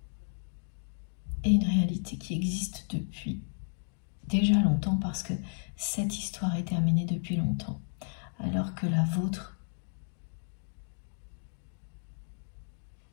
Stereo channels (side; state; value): right; silent; digital silence